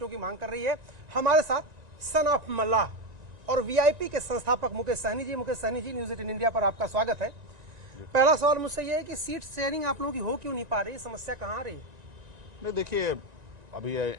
की मांग कर रही है। हमारे साथ सन ऑफ मल्लाह और वीआईपी के संस्थापक मुकेश सहनी जी। मुकेश सहनी जी, न्यूज 18 इंडिया पर आपका स्वागत है। पहला सवाल मुझसे यह है कि सीट शेयरिंग आप लोगों की हो क्यों नहीं पा रही, समस्या कहाँ आ रही है? नहीं, देखिए, अभी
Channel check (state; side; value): late; left; 1.9 ms